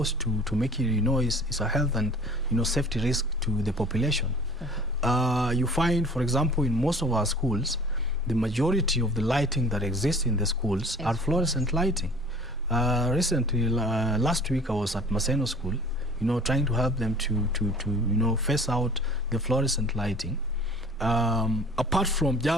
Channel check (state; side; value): normal; both; correlation 0.47